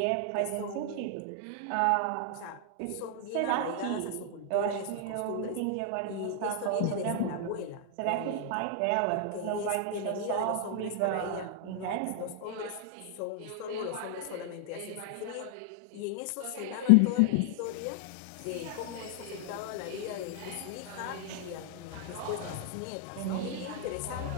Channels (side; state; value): both; different; correlation 0.00